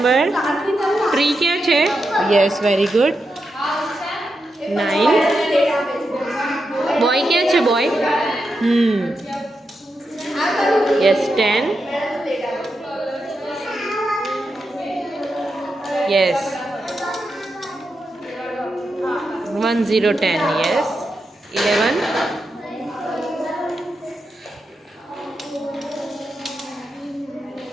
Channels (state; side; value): normal; both; correlation 0.86